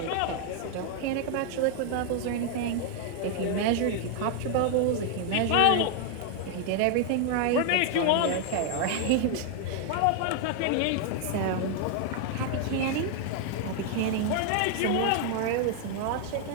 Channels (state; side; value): different; both; correlation 0.00